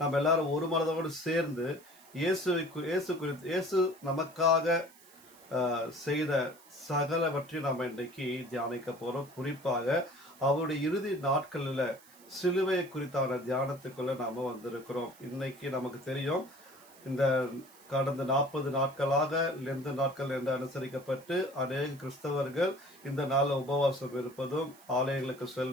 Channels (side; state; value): right; noise; hiss, 24 dB below the sound